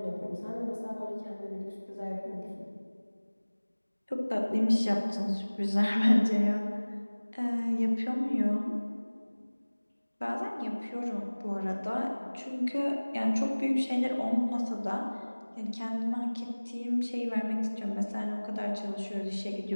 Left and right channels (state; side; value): inverted; both; correlation -1.00